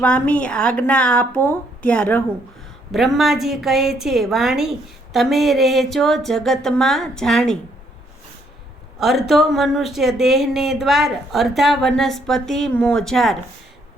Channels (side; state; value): both; normal; correlation 0.69